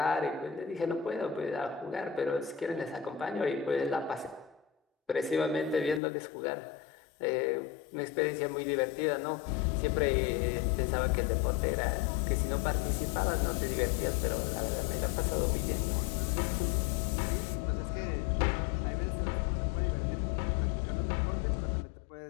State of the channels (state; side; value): drops out; right; at 6.0 s